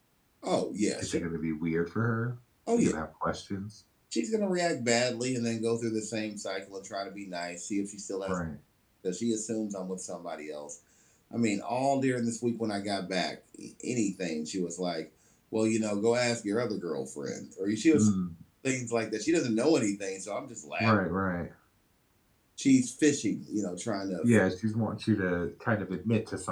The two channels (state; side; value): identical; both; correlation 1.00